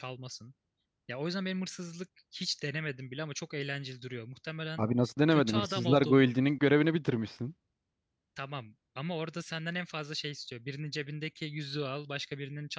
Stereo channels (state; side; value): identical; both; correlation 1.00